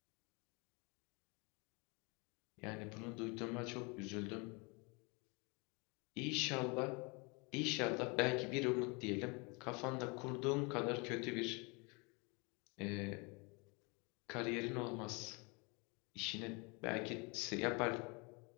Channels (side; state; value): right; quieter; 30.2 dB